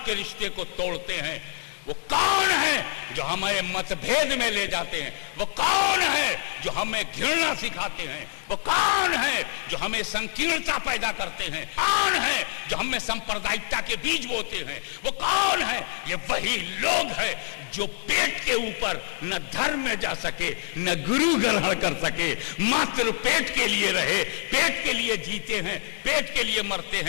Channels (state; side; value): silent; right; digital silence